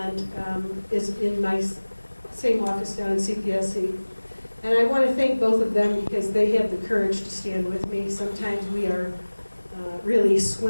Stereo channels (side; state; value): both; inverted; correlation -1.00